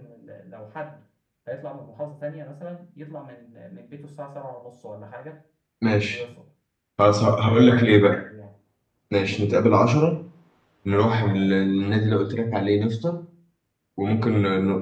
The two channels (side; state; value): both; identical; correlation 1.00